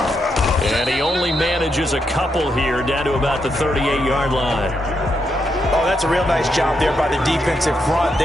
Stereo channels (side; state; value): both; normal; correlation 0.81